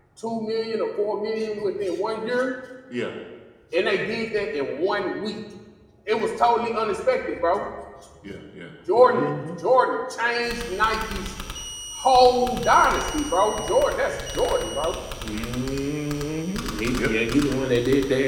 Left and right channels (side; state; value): both; identical; correlation 1.00